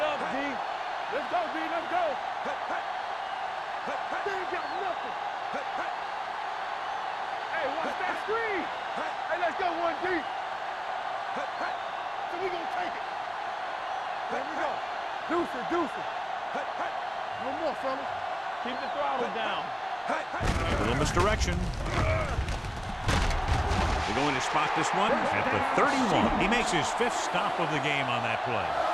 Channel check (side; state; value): both; identical; correlation 1.00